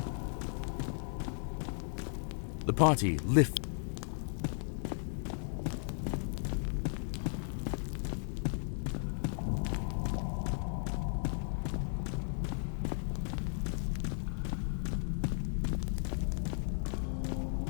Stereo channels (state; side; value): silent; right; 54 dB below the other